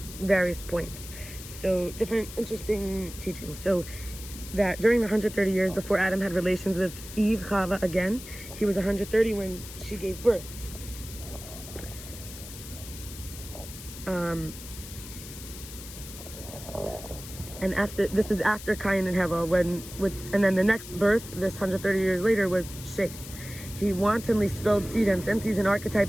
various points. So different interesting teachings. So that during the 130 years before Adam had relations with Eve, Chava again, he was 130 when she gave birth. And this is after Cain and Hevel, and then the next birth, this 130 years later, was Shes. He wantonly spilled seed, and since he's an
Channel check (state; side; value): noise; left; hiss, 13 dB below the sound